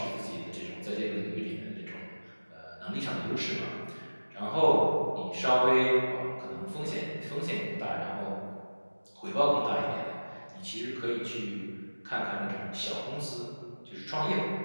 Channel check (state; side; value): inverted; both; correlation -1.00